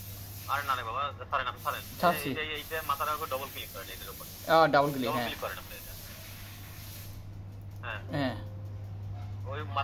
আরে না রে বাবা, সরেন আপনি সরেন। এইটা মাথার উপর ডবল ক্লিক করেন, এটার উপর ডাবল ক্লিক, ডবল হ্যাঁ ক্লিক করেন আপনি এটা। হ্যাঁ হ্যাঁ ওই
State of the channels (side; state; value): both; identical; correlation 1.00